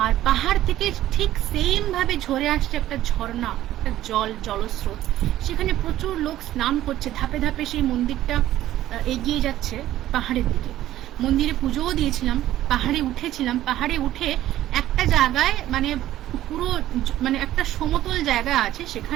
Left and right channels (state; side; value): quieter; left; 13.7 dB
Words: আর পাহাড় থেকে ঠিক সেম ভাবে ঝরে আসছে একটা ঝর্ণা, একটা জলস্রোত। সেখানে প্রচুর লোক স্নান করছে, ধাপে ধাপে সেই মন্দিরটা এগিয়ে যাচ্ছে পাহাড়ের দিকে। মন্দিরে পুজোও দিয়েছিলাম, পাহাড়ে উঠেছিলাম, পাহাড়ে উঠে একটা জায়গায় মানে পুরো মানে একটা সমতল জায়গা আছে,